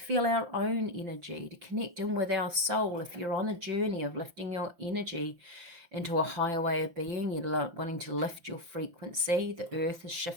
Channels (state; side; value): late; left; 5.8 ms